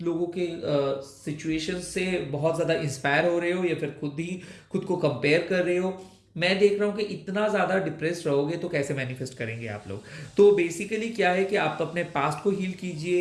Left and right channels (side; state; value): both; identical; correlation 1.00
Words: लोगों के सिचुएशन से बहुत ज़्यादा इंस्पायर हो रहे हो, या फिर खुद को कंपेयर कर रहे हो। मैं देख रहा हूँ कि इतना ज़्यादा डिप्रेस्ड रहोगे तो कैसे मैनिफेस्ट करेंगे आप लोग। तो बेसिकली क्या है कि आप अपने पास्ट को हील